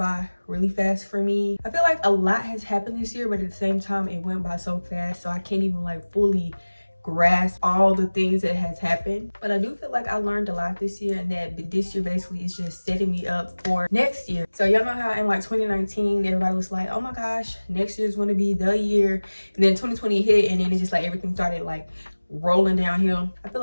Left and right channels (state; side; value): inverted; both; correlation -1.00